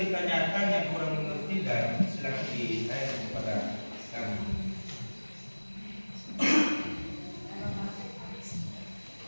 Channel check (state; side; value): inverted; both; correlation -1.00